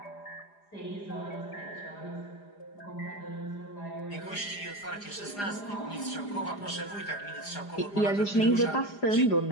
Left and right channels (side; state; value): right; late; 4.9 ms